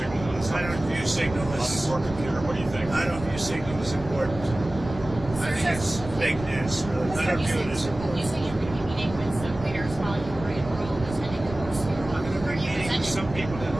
on his I don't view Signal on his as. work computer. What do you think? I don't view Signal as important. I think it's fake news. I don't view it as important. You said you're going to be meeting with some leaders while you were in Rome, attending the Holy Spirit. I'm going to be meeting with some people in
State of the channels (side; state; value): right; noise; rumble, 12 dB below the sound